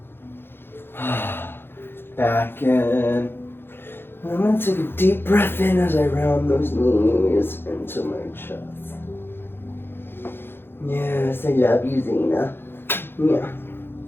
Back in. I'm going to take a deep breath in as I round those knees into my chest. Yes, I love you, Zena. Yeah.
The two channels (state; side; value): late; right; 0.10 ms